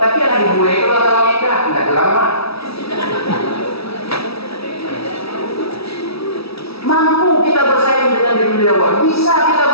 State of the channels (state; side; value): late; right; 0.77 ms